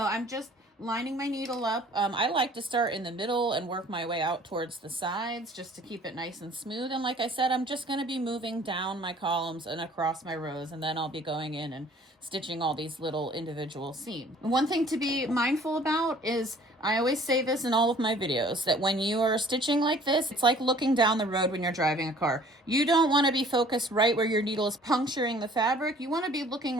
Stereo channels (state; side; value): normal; both; correlation 0.53